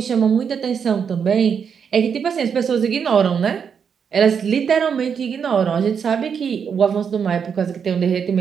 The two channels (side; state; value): left; quieter; 6.9 dB